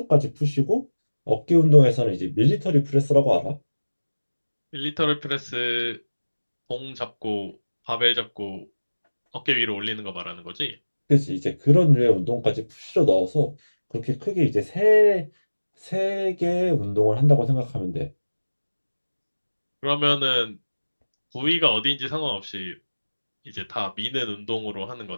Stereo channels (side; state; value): both; inverted; correlation -1.00